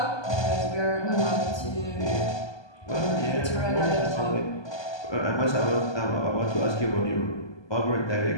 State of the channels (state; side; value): late; right; 1.2 ms